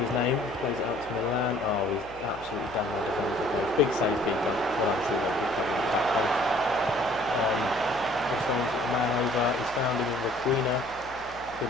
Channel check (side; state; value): left; noise; hum, 20 dB below the sound